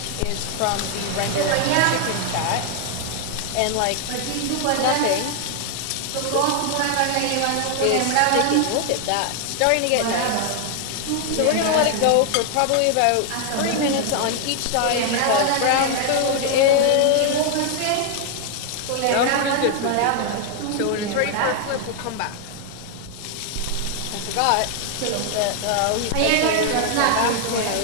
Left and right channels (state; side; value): different; both; correlation 0.00